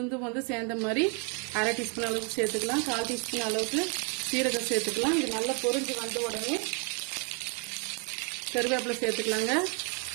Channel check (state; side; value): quieter; left; 36.5 dB